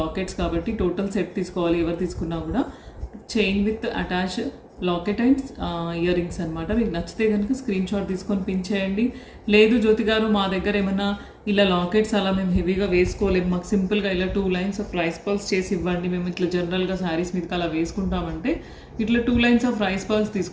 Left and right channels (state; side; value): identical; both; correlation 1.00